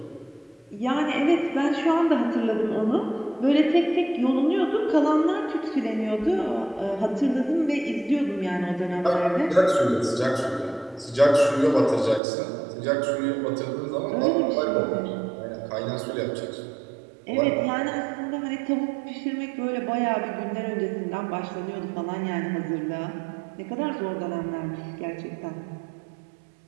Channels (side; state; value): left; drops out; at 12.2 s